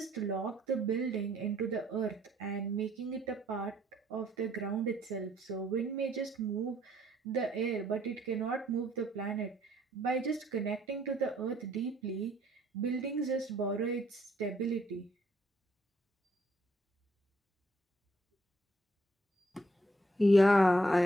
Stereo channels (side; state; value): both; normal; correlation 0.67